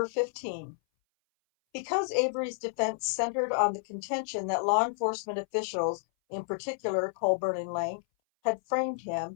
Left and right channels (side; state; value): right; silent; 57 dB below the other